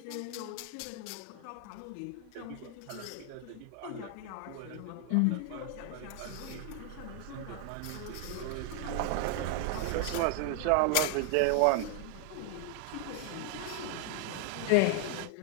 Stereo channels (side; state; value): both; different; correlation 0.00